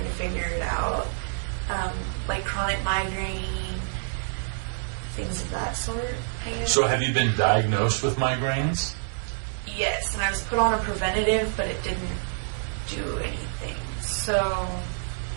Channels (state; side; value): silent; left; digital silence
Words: to figure it out. Like chronic migraine, things of that sort, I guess. So have you been diagnosed with migraines? Yes, and I was put on a preventative, but it didn't do anything. So